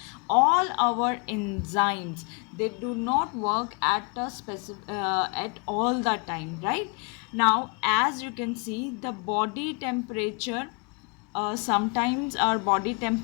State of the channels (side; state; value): right; quieter; 34.3 dB